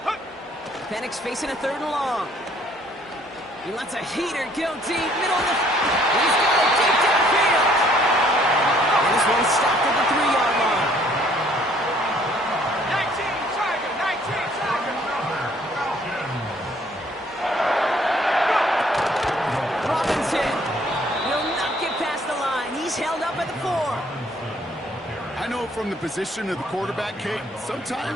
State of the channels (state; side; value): normal; both; correlation 0.61